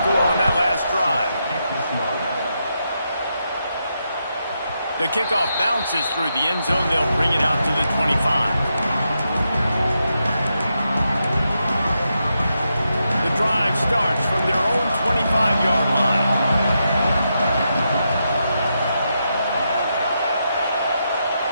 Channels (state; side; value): inverted; both; correlation -0.84